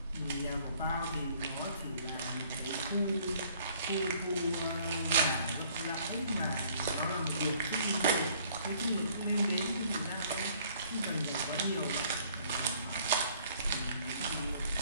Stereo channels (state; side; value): inverted; both; correlation -0.60